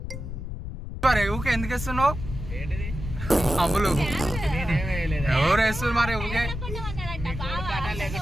మరి ఊకే ఎందుకు వేస్తున్నావు? అమ్ములు ఎవరు వేస్తున్నారు మరి ఊకే?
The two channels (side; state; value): left; noise; rumble, 7 dB below the sound